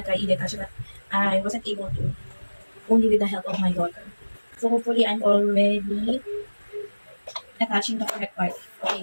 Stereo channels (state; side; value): inverted; both; correlation -1.00